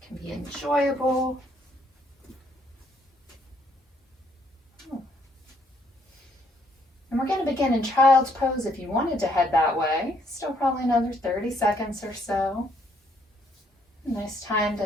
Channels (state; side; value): normal; both; correlation 0.69